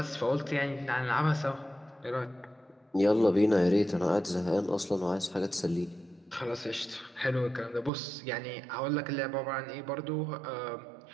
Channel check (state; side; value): drops out; left; at 7.9 s